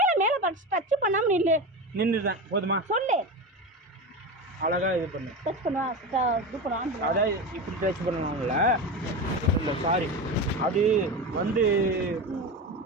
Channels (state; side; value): normal; both; correlation 0.23